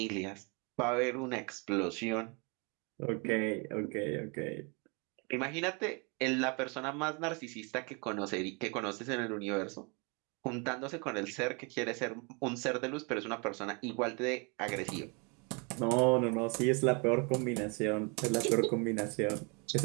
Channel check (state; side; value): quieter; left; 32.4 dB